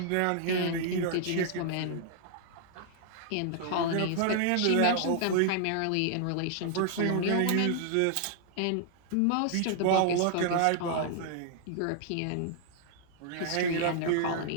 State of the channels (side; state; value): both; different; correlation -0.01